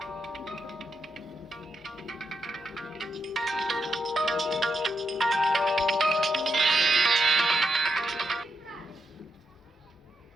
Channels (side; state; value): both; normal; correlation 0.83